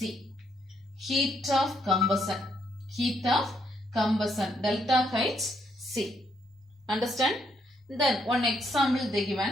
Heat of combustion. Heat of combustion. Delta Hc. Understand? Then one example they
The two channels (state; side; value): normal; both; correlation 0.74